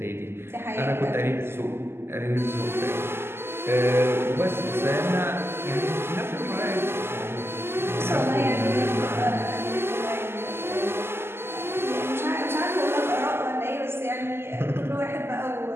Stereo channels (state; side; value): late; left; 0.12 ms